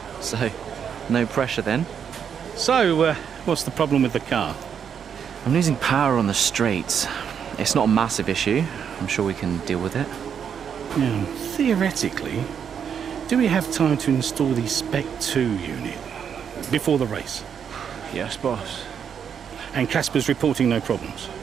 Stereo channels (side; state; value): left; quieter; 7.7 dB